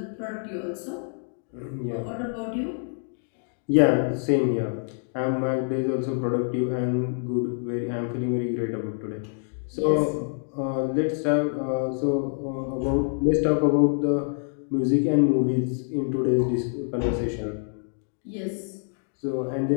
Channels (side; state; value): right; silent; 61 dB below the other